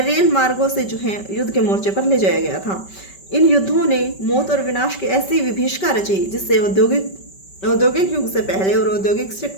रेल मार्गों से जो है युद्ध के मोर्चे पर ले जाया गया था। इन युद्धों ने मौत और विनाश की ऐसी विभीषिका रची जिससे औद्योगिक युग से पहले और औद्योगिक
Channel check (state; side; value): late; right; 5.2 ms